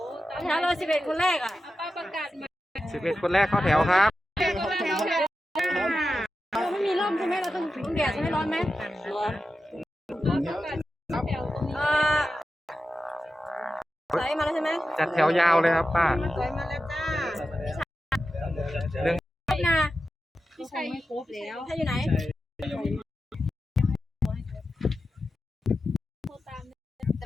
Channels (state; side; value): normal; both; correlation 0.91